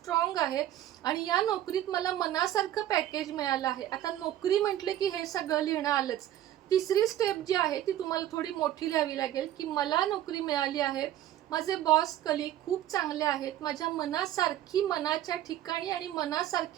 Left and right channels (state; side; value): quieter; left; 12.6 dB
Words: आहे आणि या नोकरीत मला मनासारखं पॅकेज मिळालं आहे. आता नोकरी म्हटले की हे सगळं लिहिणं आलंच. तिसरी स्टेप जी आहे ती तुम्हाला थोडी मोठी लिहावी लागेल की मला नोकरी मिळाली आहे, माझे बॉस कलीग खूप चांगले आहेत, माझ्या मनासारखी मनाच्या ठिकाणी आणि